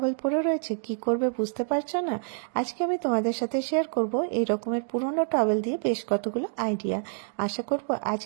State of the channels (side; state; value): left; silent; digital silence